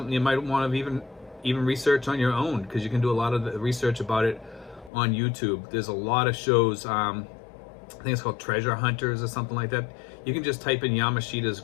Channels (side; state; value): right; drops out; at 4.9 s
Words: you might want to even even research on your own, because you can do a lot of the research about it on YouTube. There's a lot of shows. I think it's called Treasure Hunters or something like that. You can just type in Yamashita's